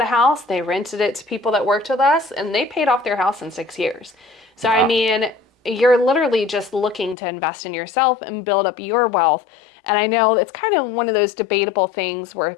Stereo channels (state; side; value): drops out; right; at 7.2 s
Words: a house, they rented it to people that worked with us, and they paid off their house in 6 years. So, wow. I mean, you're literally just looking to invest in yourself and build up your wealth. And I know it's kind of one of those debatable things where